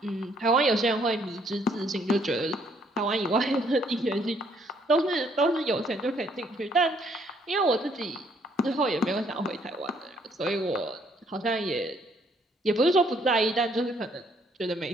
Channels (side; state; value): both; normal; correlation 0.67